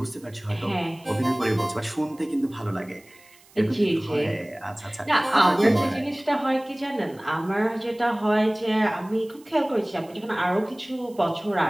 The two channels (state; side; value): noise; right; hiss, 27 dB below the sound